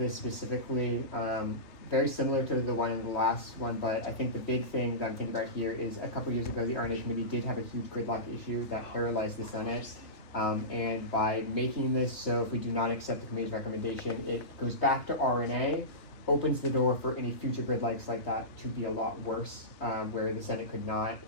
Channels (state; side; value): late; right; 2.7 ms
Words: specifically. Very similar to the one in the last one, but I think the big thing that I'm thinking about here is a couple years ago the RNA committee did have a huge gridlock issue that paralyzed the Senate. And by making this so if we do not accept the committee's recommendation, it goes back to RNA, opens the door for any future gridlocks like that to be a lot worse, where the Senate could not